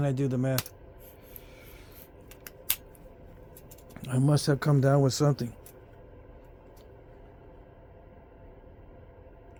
I do the math? I must have come down with something.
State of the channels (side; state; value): both; identical; correlation 1.00